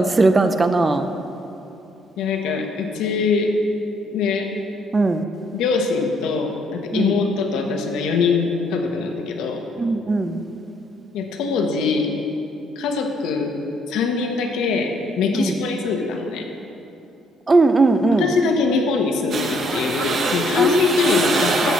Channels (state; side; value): normal; both; correlation 0.68